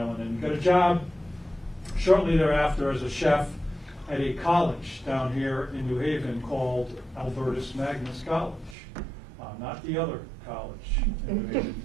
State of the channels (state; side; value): drops out; left; at 8.8 s